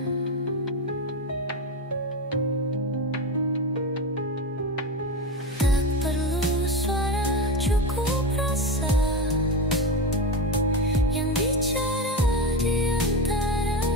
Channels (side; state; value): both; normal; correlation 0.19